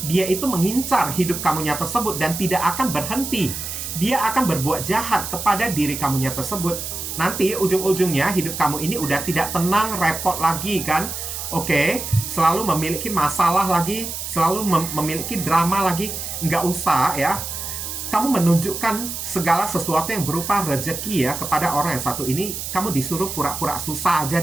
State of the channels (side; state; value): right; noise; hiss, 6 dB below the sound